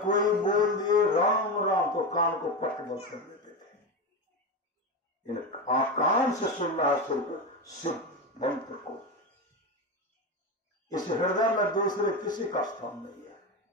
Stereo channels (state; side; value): normal; both; correlation 0.17